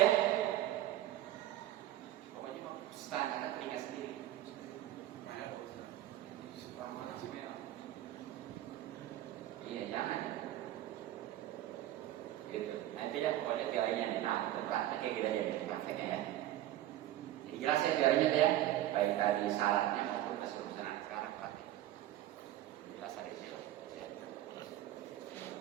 Pokoknya mah standar telinga sendiri. Iya jangan. Gitu. Nanti ya pokoknya teorinya nih. Nah untuk prakteknya kita jadi prakteknya ya. Jadi jelas ya teorinya ya. Baik tadi syaratnya maupun keseluruhan sekarang praktek. Jelas hari ini loh. Ya.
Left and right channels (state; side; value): quieter; left; 13.8 dB